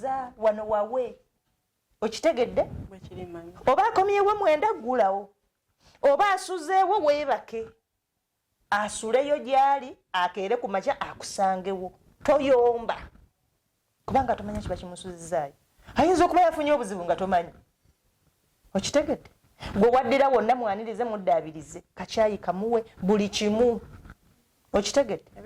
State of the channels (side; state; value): both; identical; correlation 1.00